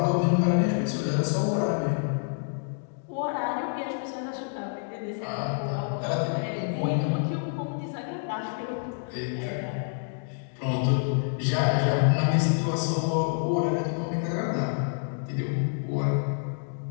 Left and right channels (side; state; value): right; silent; digital silence